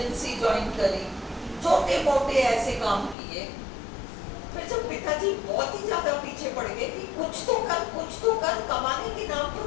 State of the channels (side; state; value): right; drops out; at 3.2 s